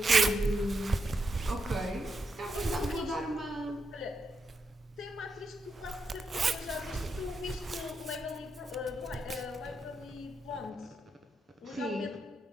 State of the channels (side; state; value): both; normal; correlation 0.83